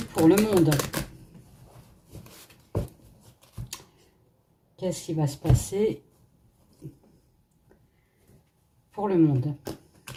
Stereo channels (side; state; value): both; identical; correlation 1.00